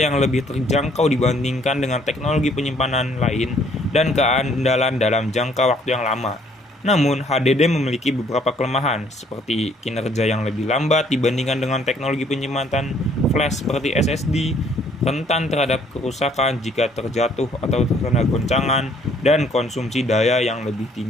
lebih terjangkau dibandingkan dengan teknologi penyimpanan lain, dan keandalan dalam jangka waktu yang lama. Namun, HDD memiliki beberapa kelemahan, seperti kinerja yang lebih lambat dibandingkan dengan teknologi penyimpanan flash seperti SSD, rentan terhadap kerusakan jika terjatuh atau terkena goncangan, dan konsumsi daya yang lebih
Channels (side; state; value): both; normal; correlation 0.63